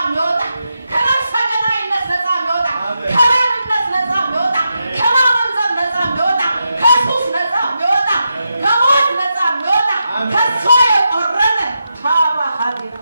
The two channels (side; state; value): both; inverted; correlation -0.87